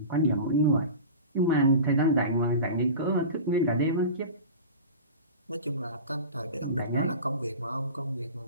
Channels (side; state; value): both; inverted; correlation -0.33